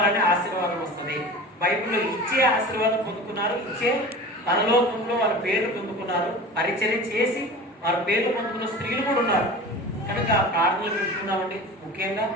ఆశీర్వాదం వస్తుంది. బైబిల్లో ఇచ్చే ఆశీర్వాదం పొందుకున్నారు, ఇచ్చే పరలోకంలో వారి పేర్లు పొందుకున్నారు. పరిచర్య చేసి వారి పేర్లు పొందుకున్న స్త్రీలు కూడా ఉన్నారు. కనుక ప్రార్థనలు పెట్టుకుందామండి. ముఖ్యంగా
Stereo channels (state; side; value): normal; both; correlation 0.36